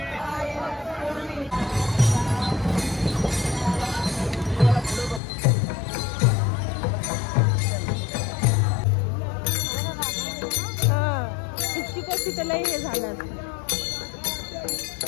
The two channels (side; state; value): right; drops out; at 5.2 s